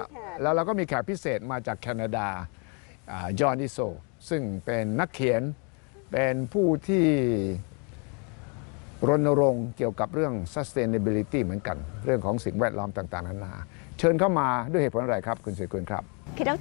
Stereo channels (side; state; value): right; quieter; 35.8 dB